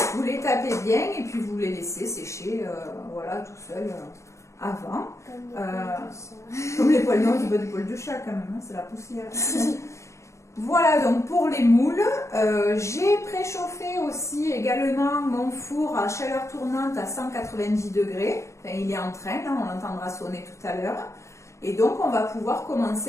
vous les tapez bien et puis vous les laissez sécher voilà, tout seul. Avant, comme les poils, non, du bas du poil de chat quand même, hein, c'est la poussière. Voilà donc pour les moules. J'ai préchauffé aussi également mon four à chaleur tournante à 190 degrés. Enfin, il est en train, hein, on l'entendra sonner tout à l'heure. Et donc on va pouvoir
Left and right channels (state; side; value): late; right; 0.14 ms